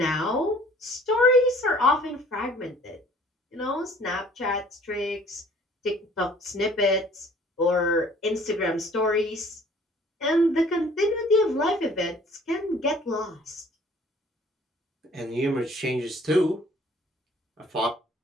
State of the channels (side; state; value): both; normal; correlation 0.54